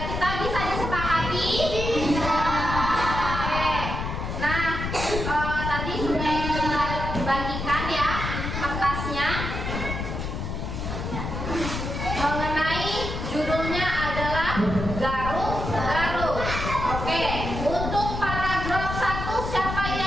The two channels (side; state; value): left; noise; rumble, 4 dB below the sound